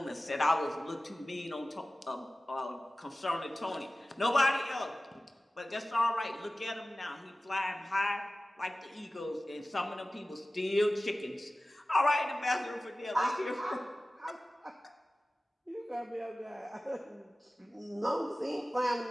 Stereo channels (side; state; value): both; normal; correlation 0.97